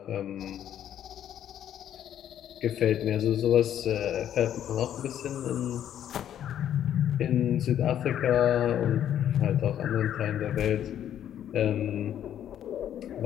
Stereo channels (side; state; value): right; quieter; 10.5 dB